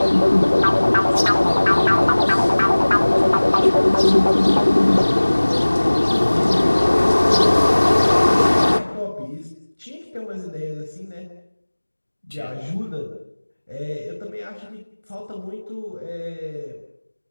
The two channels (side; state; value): both; inverted; correlation -1.00